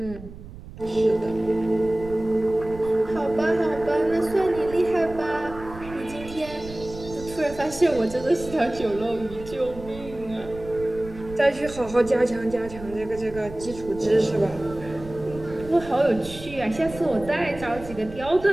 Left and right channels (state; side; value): noise; right; rumble, 15 dB below the sound